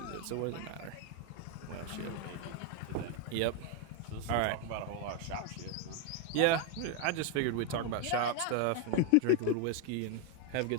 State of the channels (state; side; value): different; both; correlation 0.01